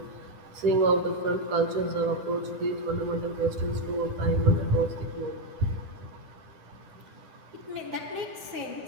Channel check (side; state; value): left; late; 9.8 ms